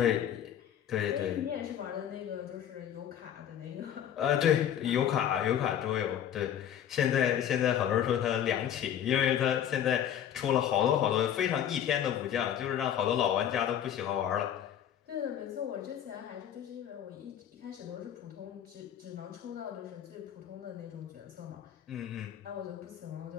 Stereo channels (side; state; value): right; quieter; 10.0 dB